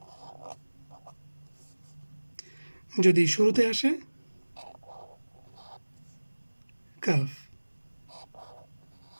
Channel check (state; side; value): inverted; both; correlation -1.00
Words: যদি শুরুতে আসে কাফ।